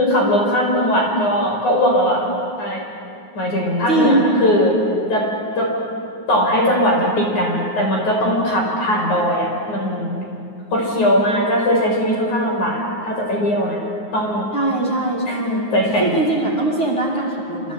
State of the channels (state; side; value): late; right; 9.5 ms